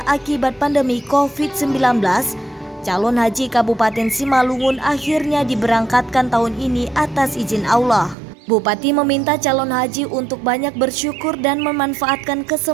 akibat pandemi COVID-19, calon haji Kabupaten Simalungun akhirnya diberangkatkan tahun ini atas izin Allah. Bupati meminta calon haji untuk banyak bersyukur dan memanfaatkan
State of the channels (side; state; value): left; drops out; at 8.2 s